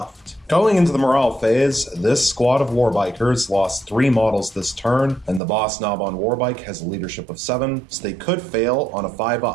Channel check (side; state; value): left; drops out; at 5.4 s